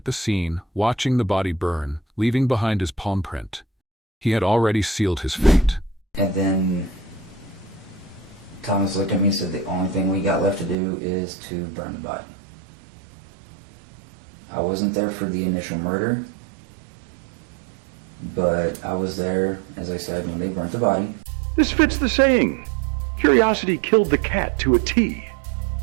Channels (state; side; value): drops out; left; at 10.8 s